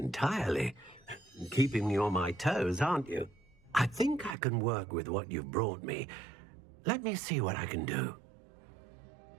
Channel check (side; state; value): left; drops out; at 4.4 s